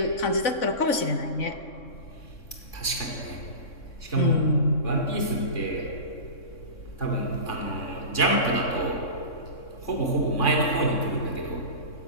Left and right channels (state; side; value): late; right; 3.6 ms